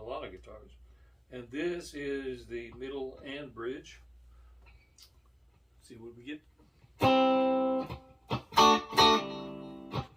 lot of guitars. And this is the middle and bridge. Let's see what we get.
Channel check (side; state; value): both; identical; correlation 1.00